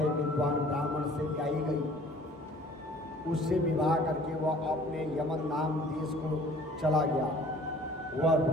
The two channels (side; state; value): both; normal; correlation 0.51